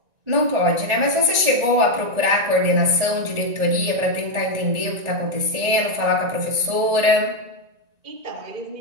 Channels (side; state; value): left; late; 1.9 ms